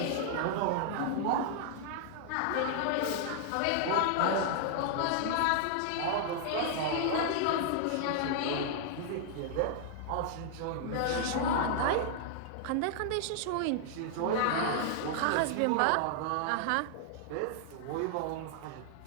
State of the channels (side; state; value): both; different; correlation -0.01